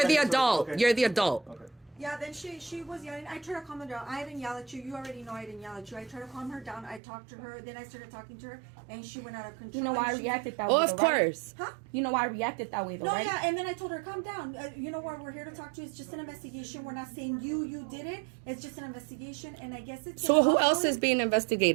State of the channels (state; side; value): drops out; left; at 7.0 s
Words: the adult. Okay. You're the adult. Okay. Yeah, then she was yelling. I tried to calm her down. I didn't yell at you. You already know I didn't yell at you. I tried to calm her down. I talked to her. Then I started talking to her, and she went out of control. You know why I reacted that way? Oh, of course. Huh? You know why I reacted that way, though, No, right? yeah, and then I told her, calm down. You know what? We're here to talk to you. It's just an investigation. We're not saying you did it. It's just an investigation, and I guess it's. So who else is being